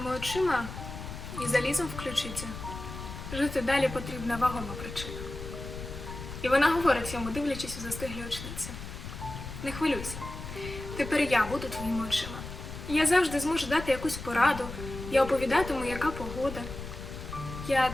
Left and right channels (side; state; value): left; noise; rumble, 9 dB below the sound